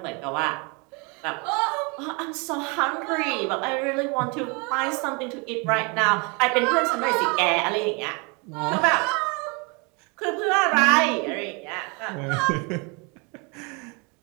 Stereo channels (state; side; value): quieter; left; 31.1 dB